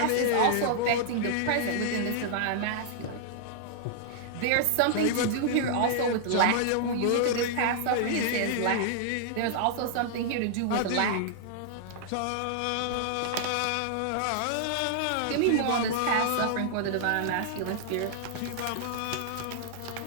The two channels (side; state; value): both; different; correlation -0.01